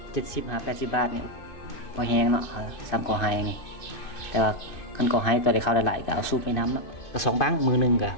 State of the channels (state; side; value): late; right; 2.5 ms